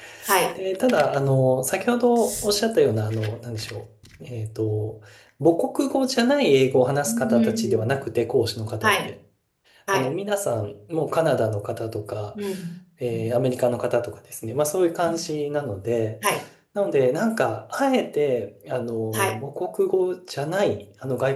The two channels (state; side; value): identical; both; correlation 1.00